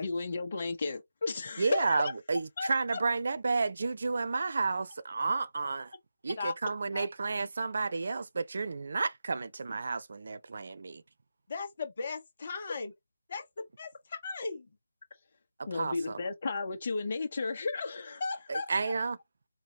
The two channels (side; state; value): both; inverted; correlation -0.90